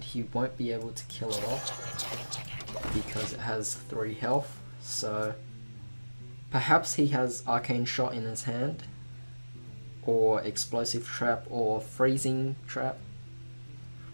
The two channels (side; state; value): both; inverted; correlation -1.00